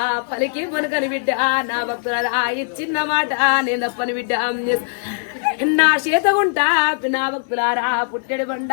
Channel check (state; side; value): silent; right; digital silence